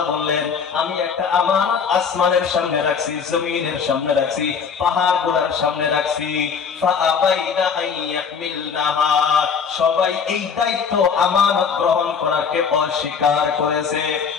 বললেন আমি একটা আমানত আসমানের সামনে রাখছি, জমিনের সামনে রাখছি, পাহাড় গুলার সামনে রাখছি। ফাআবাইনা আন ইয়াহমিলনাহা, সবাই এই দায়িত্ব আমানত গ্রহণ করাকে অস্বীকার করেছে।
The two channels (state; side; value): quieter; right; 6.3 dB